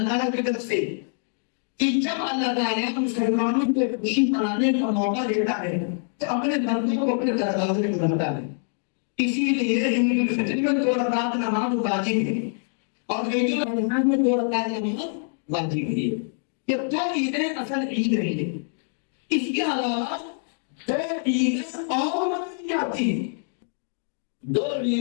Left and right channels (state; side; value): silent; right; 62 dB below the other